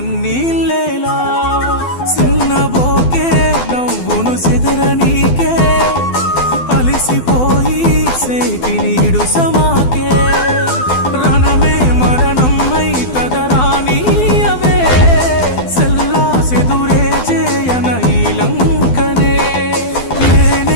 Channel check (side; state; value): right; late; 12 ms